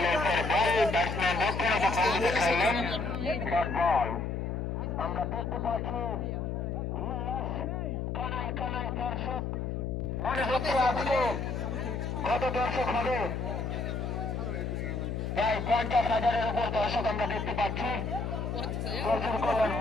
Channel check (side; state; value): left; noise; hum, 2 dB below the sound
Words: ব্যাটসম্যান দেখাইলেন বল। আমরা দেখতে পাচ্ছি কানায় কানায় দর্শক, মনে হচ্ছে আজকে কত দর্শক হবে, প্রায় 50,000-এর উপর দর্শক আমরা দেখতে পাচ্ছি। প্রচুর করলেন